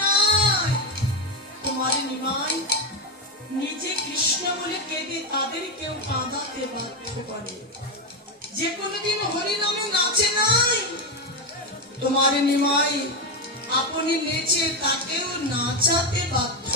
নাই, তোমার নিমাই নিজে কৃষ্ণ বলে কেঁদে তাদেরকেও কাঁদাতে বাধ্য করে। যে কোনোদিন হরি নামে নাচে নাই, তোমার নিমাই আপনি নেচে তাকেও নাচাতে বাধ্য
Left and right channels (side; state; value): both; normal; correlation 0.11